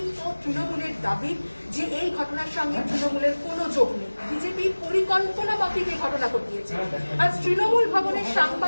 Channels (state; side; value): inverted; both; correlation -1.00